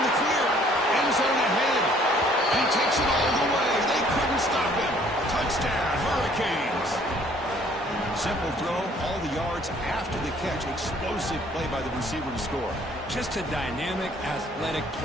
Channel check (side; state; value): both; normal; correlation 0.59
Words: the clear? End zone ahead. He takes it all the way. They couldn't stop him. Touchdown, Hurricanes. Simple throw, all the yards after the catch. Explosive play by the receiver to score. Just a dynamic, athletic